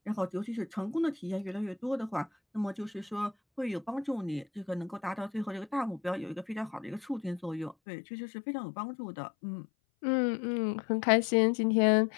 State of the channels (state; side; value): drops out; right; at 7.8 s